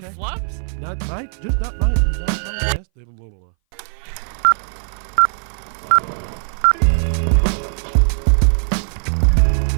fact check. flops? Not mine. Just not mine. Not mine. Yes, blah, blah, blah.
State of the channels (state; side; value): silent; left; 62 dB below the other